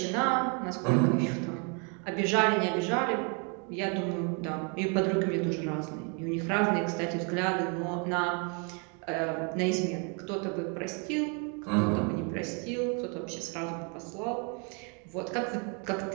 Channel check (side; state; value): left; quieter; 35.8 dB